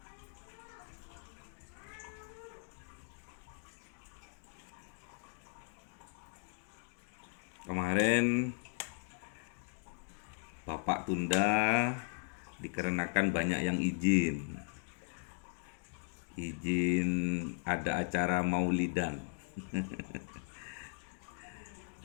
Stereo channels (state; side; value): silent; right; digital silence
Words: Kemarin Bapak tunda dikarenakan banyak yang izin ada acara maulidan.